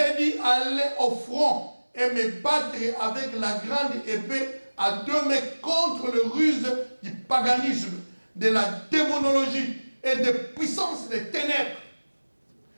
dit aller au front et me battre avec la grande épée à 2 mains contre le ruse du paganisme, de la démonologie et des puissances des ténèbres.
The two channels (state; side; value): inverted; both; correlation -1.00